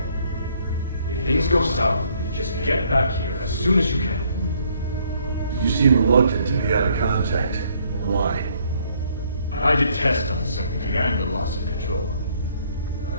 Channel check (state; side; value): inverted; both; correlation -0.65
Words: If things go south, just get back here as soon as you can. You seem reluctant to be out of contact. Why? I detest uncertainty and the loss of control.